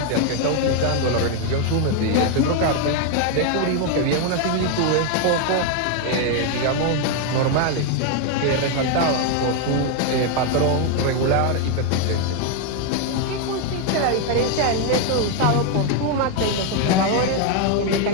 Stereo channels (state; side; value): different; both; correlation 0.01